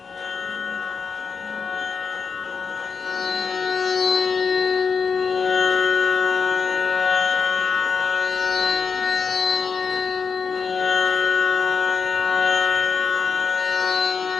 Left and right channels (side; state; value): right; quieter; 5.5 dB